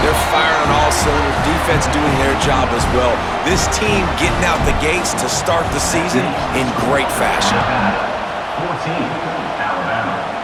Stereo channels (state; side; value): identical; both; correlation 1.00